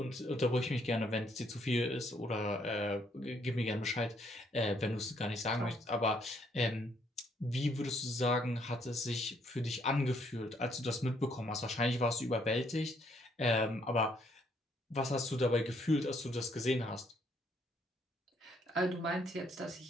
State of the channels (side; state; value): both; normal; correlation 0.69